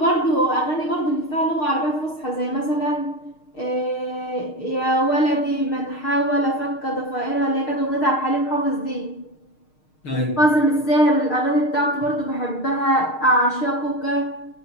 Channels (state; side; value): late; right; 6.5 ms